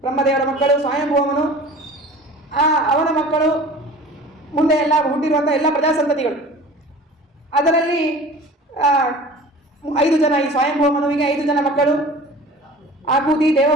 ಬ್ರಹ್ಮದೇವರ ಮಕ್ಕಳು ಸ್ವಯಂಭೂವನು, ಅವನ ಮಕ್ಕಳು, ಮುಂದೆ ಎಲ್ಲ ಹುಟ್ಟಿರುವಂಥ ಎಲ್ಲ ಪ್ರಜಾಸಂತತಿಗಳು. ಅದರಲ್ಲಿ 5 ಜನ, ಈ ಸ್ವಯಂಭೂವನುವಿಗೆ 5 ಜನ ಮಕ್ಕಳು, ಆಕೂತಿ,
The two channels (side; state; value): both; normal; correlation 0.42